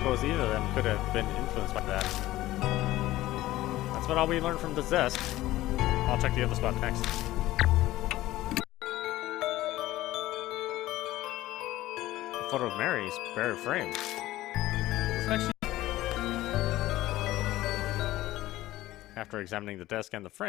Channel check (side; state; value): right; quieter; 16.2 dB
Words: either of them could have been influenced by that. That's what all we learned from this desk. I'll check the other spot next. A photo of Mary's bare frame. Looks like she... After examining the desk and the